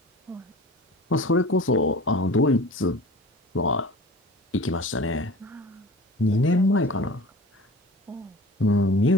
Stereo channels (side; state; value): both; normal; correlation 0.40